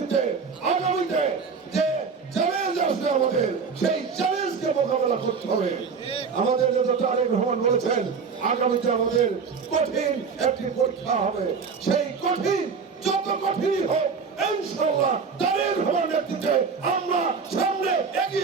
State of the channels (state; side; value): quieter; left; 5.5 dB